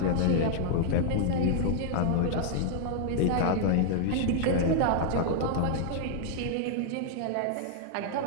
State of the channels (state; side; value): different; both; correlation -0.01